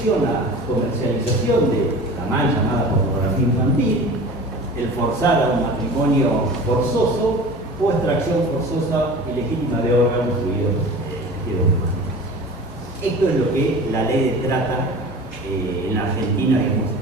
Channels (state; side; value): normal; both; correlation 0.38